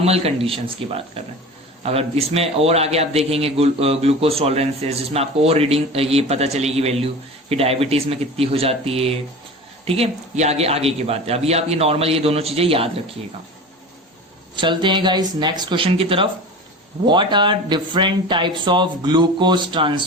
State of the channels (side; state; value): both; normal; correlation 0.34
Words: कंडीशंस की बात कर रहे हैं। अगर इसमें और आगे आप देखेंगे ग्लूकोज टॉलरेंसेस, जिसमें आपको और रीडिंग ये पता चलेगी वैल्यू कि डायबिटीज में कितनी हो जाती है, ठीक है, ये आगे की बात है। अभी आप ये नॉर्मल ये दोनों चीजें याद रखिएगा। चलते हैं गाइस नेक्स्ट क्वेश्चन की तरफ। What are different types of glucose